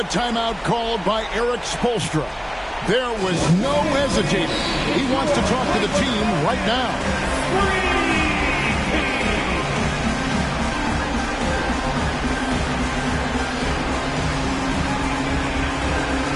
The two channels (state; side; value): identical; both; correlation 1.00